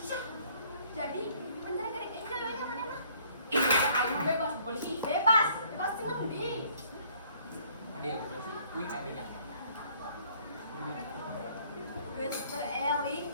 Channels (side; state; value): both; inverted; correlation -0.60